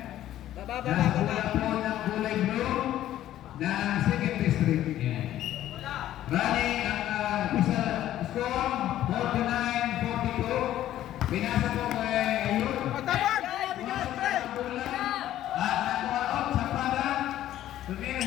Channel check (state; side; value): quieter; right; 12.9 dB